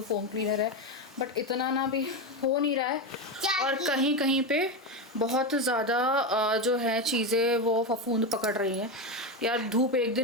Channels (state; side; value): normal; both; correlation 0.14